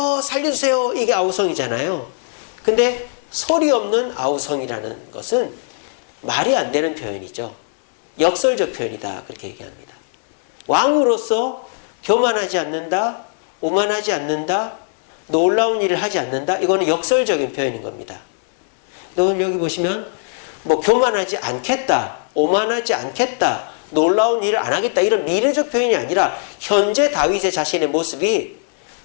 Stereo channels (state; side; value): silent; right; 66 dB below the other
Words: 살려주세요. 이게 아우성이잖아요. 근데 소리 없는 아우성이라는 것은 말이 안 되는 표현이죠. 역설적 표현이다. 그렇게 얘기합니다. 왕으로서 교만하지 않는다, 오만하지 않는다, 놀라운 일을 하지 않는다. 이거는 역설적인 표현인 겁니다. 오늘 여기 보시면 뭐 교만하지 않겠다, 오만하지 않겠다, 놀라운 일을 안 하겠다 이런 미래적 표현이 아니라 현재 다윗의 자신의 모습이